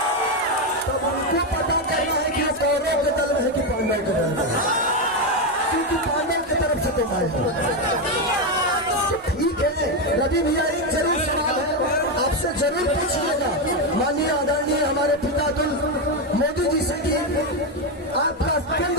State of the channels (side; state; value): both; normal; correlation 0.08